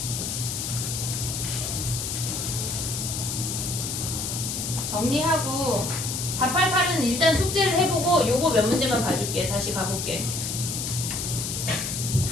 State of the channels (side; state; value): left; noise; hiss, 3 dB below the sound